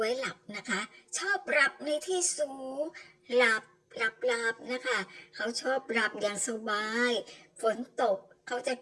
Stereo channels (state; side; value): identical; both; correlation 1.00